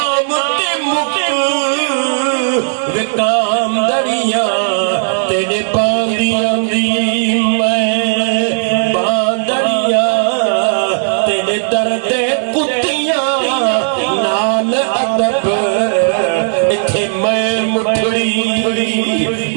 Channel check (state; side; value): silent; left; digital silence